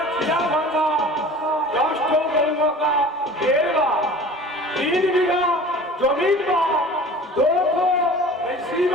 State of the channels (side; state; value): both; normal; correlation 0.42